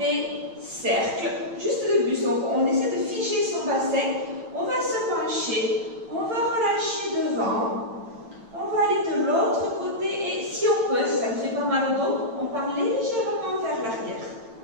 cercles, juste de buste. Donc on essaie de figer son bassin. On va se pencher. On va relâcher devant. On va aller de l'autre côté. Et si on peut, si ça ne fait pas mal au dos, on part légèrement vers l'arrière.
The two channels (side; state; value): left; late; 8.8 ms